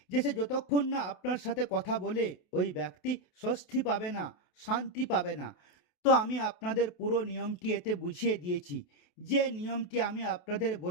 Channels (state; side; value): late; right; 28 ms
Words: যে সে যতক্ষণ না আপনার সাথে কথা বলে ওই ব্যক্তি স্বস্তি পাবে না, শান্তি পাবে না। তো আমি আপনাদের পুরো নিয়মটি এতে বুঝিয়ে দিয়েছি। যে নিয়মটি আমি আপনাদের